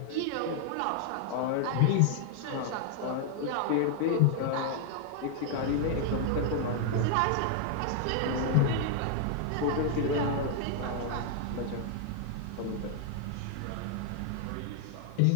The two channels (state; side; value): different; both; correlation 0.00